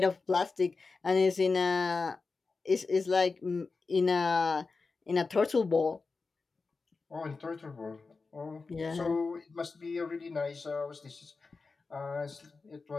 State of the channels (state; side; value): quieter; right; 4.2 dB